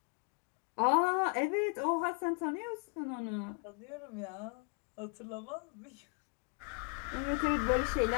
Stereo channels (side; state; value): right; quieter; 37.0 dB